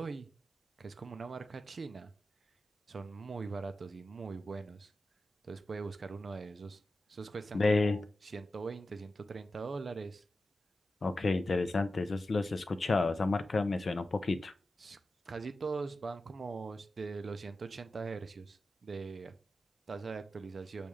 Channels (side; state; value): both; normal; correlation 0.92